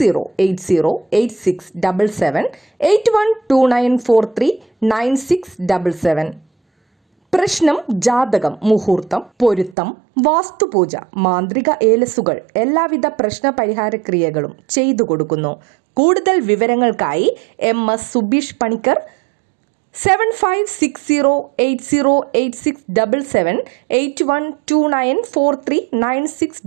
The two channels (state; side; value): drops out; left; at 9.8 s